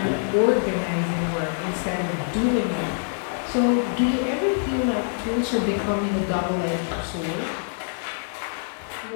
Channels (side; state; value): right; silent; 62 dB below the other